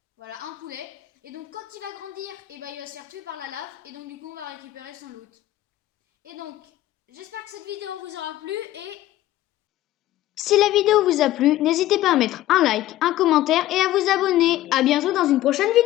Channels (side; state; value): right; quieter; 14.8 dB